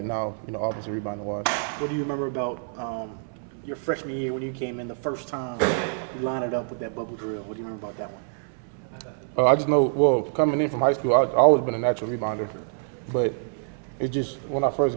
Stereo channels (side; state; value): left; silent; 61 dB below the other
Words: now, offensive rebounding-wise. What do you remember about your freshman year when you came in the first time you lined it up with that bubble drill? What do you remember about that one? I just know, coming in from high school, I've always been a natural rebounder. But it's just, when I first